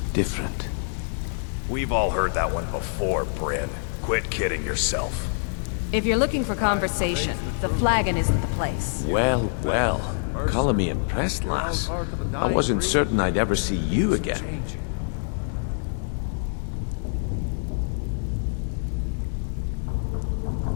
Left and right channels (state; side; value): silent; right; digital silence